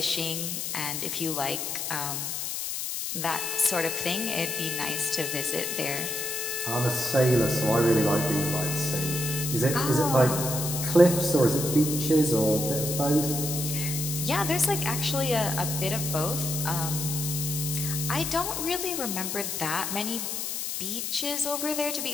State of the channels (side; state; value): left; noise; hiss, 3 dB below the sound